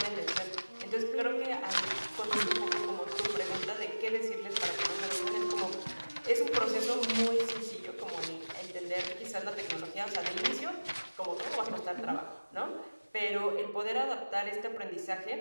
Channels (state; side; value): inverted; both; correlation -1.00